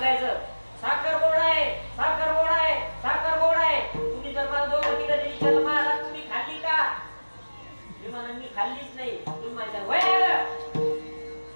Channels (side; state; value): both; inverted; correlation -1.00